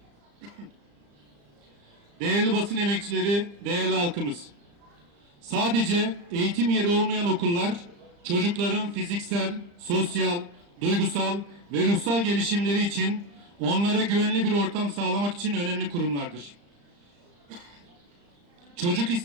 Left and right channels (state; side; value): late; left; 35 ms